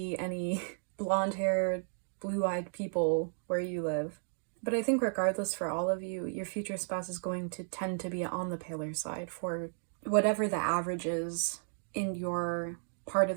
any blonde-haired, blue-eyed people where you live. But I think regardless, for all of you, your future spouse is going to tend to be on the paler side for whatever the average is in your part of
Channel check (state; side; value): silent; left; digital silence